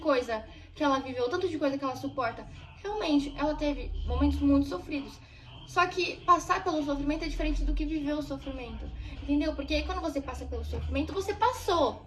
que ela viveu, o tanto de coisa que ela suporta. Realmente, ela teve momentos muito sofridos. Só que passar pelo sofrimento é diferente do que viver o sofrimento. Entendeu? Porque aí quando você passa pelo sofrimento, você passou.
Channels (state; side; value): identical; both; correlation 1.00